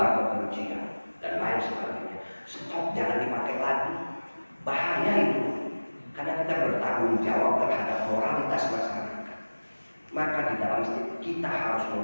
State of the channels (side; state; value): both; inverted; correlation -1.00